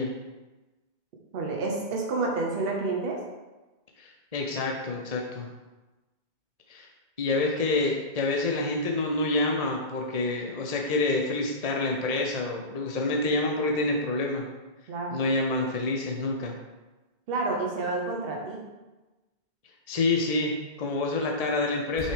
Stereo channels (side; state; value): left; late; 2.1 ms